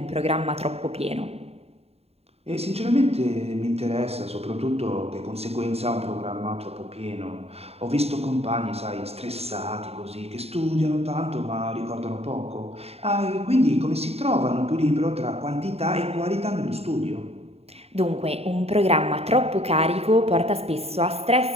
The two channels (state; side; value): late; left; 0.30 ms